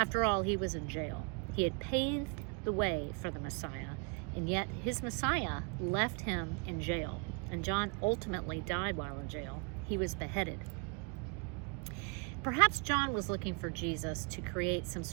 all, he was in jail. He had paved the way for the Messiah, and yet his Messiah left him in jail, and John ultimately died while in jail. He was beheaded. Perhaps John was looking for Jesus to create some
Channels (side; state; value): left; quieter; 35.2 dB